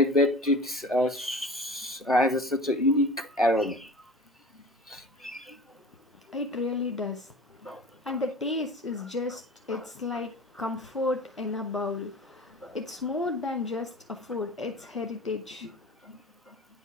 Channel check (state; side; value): normal; both; correlation 0.38